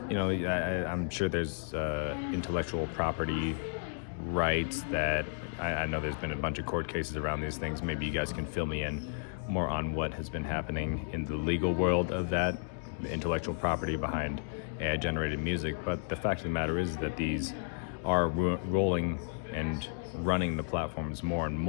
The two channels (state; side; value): silent; right; digital silence